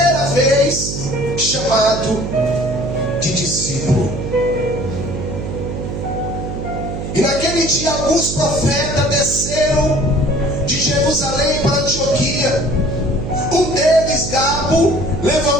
vez chamados de discípulo. E naquele dia alguns profetas desceram de Jerusalém para Antioquia. Um deles, Gabo,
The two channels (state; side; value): noise; right; hum, 6 dB below the sound